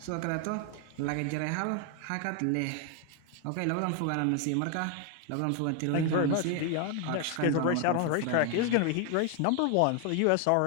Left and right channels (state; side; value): different; both; correlation 0.01